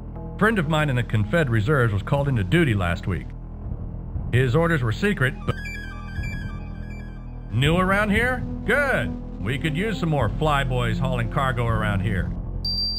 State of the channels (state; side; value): identical; both; correlation 1.00